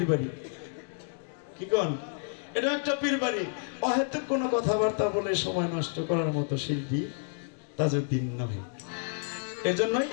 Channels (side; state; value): right; silent; 58 dB below the other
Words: বাড়ি, কি কন, এটা একটা পীর বাড়ি। অহেতুক কোনো কথাবার্তা বলে সময় নষ্ট করার মতো শিল্পী তাজউদ্দিন নয়। এই জন্যই